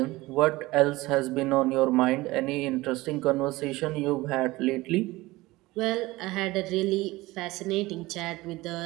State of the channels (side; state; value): left; quieter; 19.9 dB